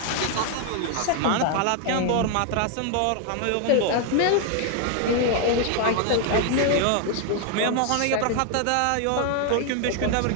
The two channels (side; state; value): both; different; correlation 0.00